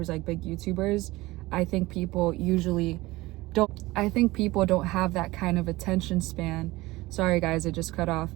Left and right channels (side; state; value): left; quieter; 19.8 dB